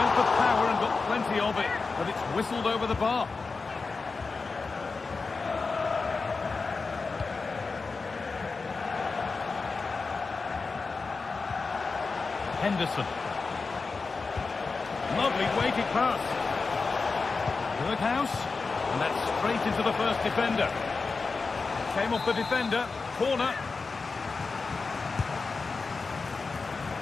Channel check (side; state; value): right; quieter; 4.3 dB